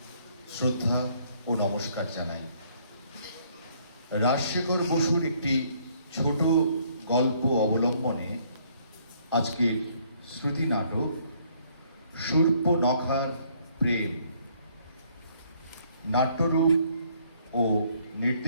শ্রদ্ধা ও নমস্কার জানাই। রাজশেখর বসুর একটি ছোট গল্প অবলম্বনে আজকের শ্রুতি নাটক শূর্পনখার প্রেম নাট্যরূপ ও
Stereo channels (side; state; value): both; inverted; correlation -0.64